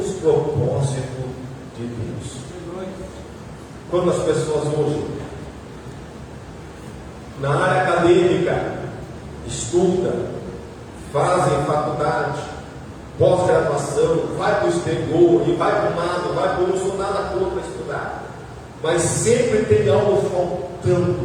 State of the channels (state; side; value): identical; both; correlation 1.00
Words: propósitos de Deus. Quando as pessoas hoje, na área acadêmica, estudam, fazem faculdade, pós-graduação, vai para o exterior e vai para um lado, vai para o outro, não nada contra estudar, mas sempre tem algo